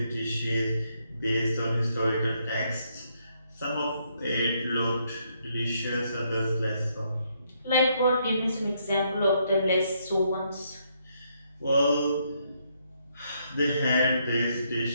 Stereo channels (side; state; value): both; inverted; correlation -0.74